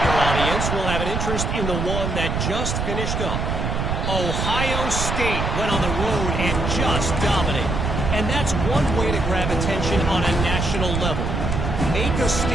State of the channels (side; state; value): right; noise; rumble, 1 dB below the sound